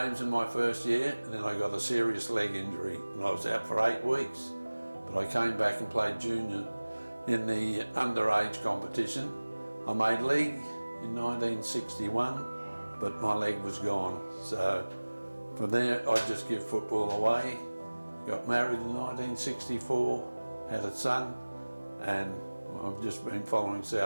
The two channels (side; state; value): both; inverted; correlation -1.00